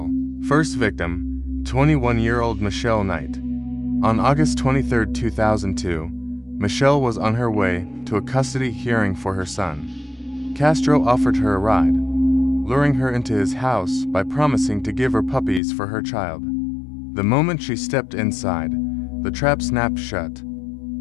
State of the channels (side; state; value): right; drops out; at 15.6 s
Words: First victim, 21-year-old Michelle Knight. On August 23, 2002, Michelle was on her way to a custody hearing for her son. Castro offered her a ride, luring her into his house by promising to give her puppies for her child. The moment she stepped inside, the trap snapped shut.